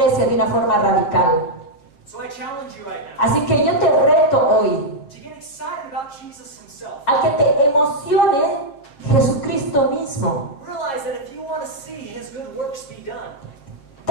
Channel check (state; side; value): late; right; 7.4 ms